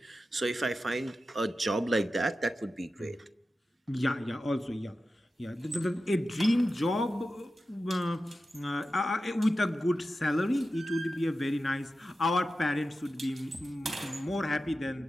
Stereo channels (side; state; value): both; normal; correlation 0.92